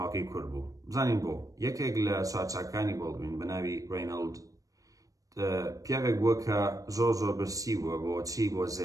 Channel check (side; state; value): left; late; 0.16 ms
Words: کورت بوو بزانین بۆ یەکێک لە سوارچاکانی بەڵدوین بە ناوی ڕێینەڵد پیاوێک بووە کە زۆر برسی بووە بۆ چی بۆ